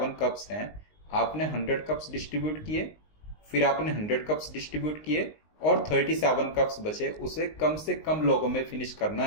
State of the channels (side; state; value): right; late; 19 ms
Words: कप्स हैं, आपने 100 कप्स डिस्ट्रीब्यूट किए, फिर आपने 100 कप्स डिस्ट्रीब्यूट किए और 37 कप्स बचे, उसे कम से कम लोगों में फिनिश करना